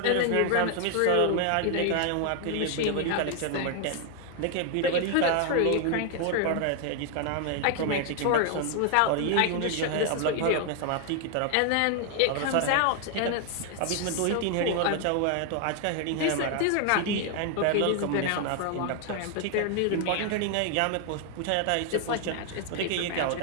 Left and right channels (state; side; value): different; both; correlation 0.00